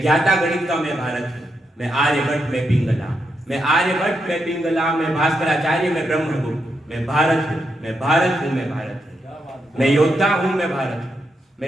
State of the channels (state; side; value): normal; both; correlation 0.82